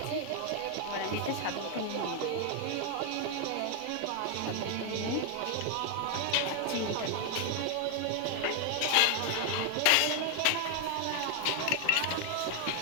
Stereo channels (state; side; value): different; both; correlation 0.00